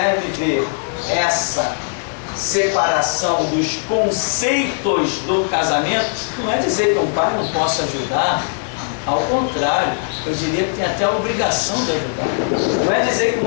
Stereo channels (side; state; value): right; silent; 67 dB below the other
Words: viver essa separação dos conceitos do casamento, não é dizer que um pai não possa ajudar, ao contrário, eu diria que tem até a obrigação de ajudar. Não é dizer que